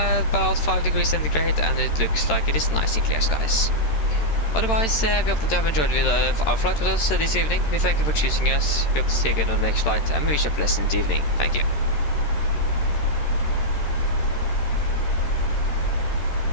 5 degrees centigrade, and it looks like it is nice and clear skies. Otherwise, we hope that you have enjoyed our flight with us this evening. We thank you for choosing us. We hope to see you again on the next flight, and we wish you a pleasant evening. Thank you.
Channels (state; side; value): late; right; 13 ms